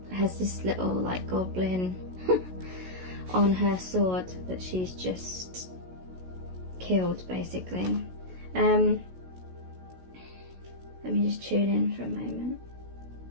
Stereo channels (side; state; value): left; late; 16 ms